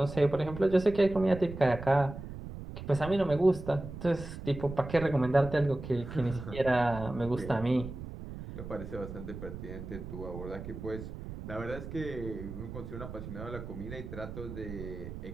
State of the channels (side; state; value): right; noise; rumble, 10 dB below the sound